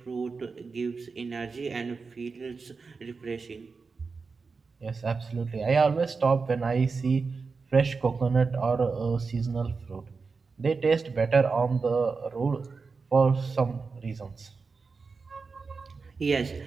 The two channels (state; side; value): quieter; left; 4.6 dB